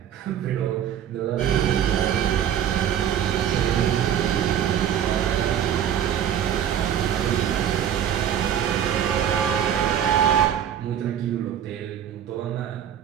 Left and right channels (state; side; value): quieter; left; 9.6 dB